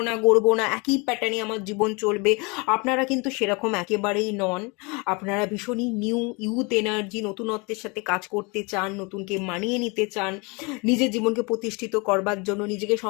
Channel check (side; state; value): right; quieter; 29.1 dB